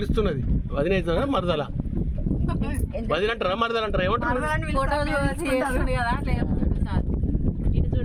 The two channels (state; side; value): identical; both; correlation 1.00